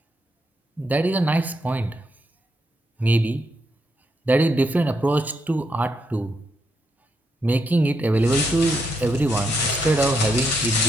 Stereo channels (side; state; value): both; normal; correlation 0.79